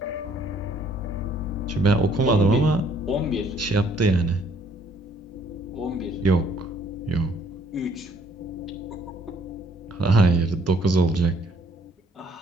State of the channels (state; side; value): normal; both; correlation 0.63